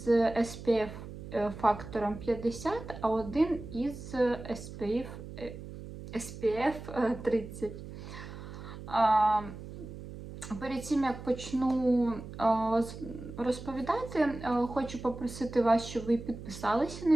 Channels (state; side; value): noise; right; hum, 12 dB below the sound